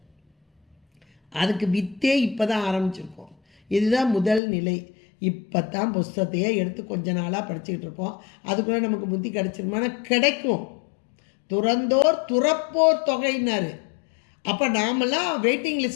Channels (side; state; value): right; drops out; at 4.4 s